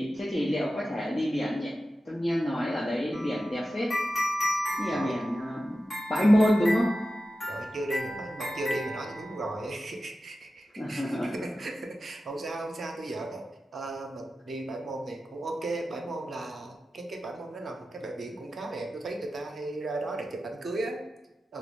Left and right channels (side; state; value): both; normal; correlation 0.93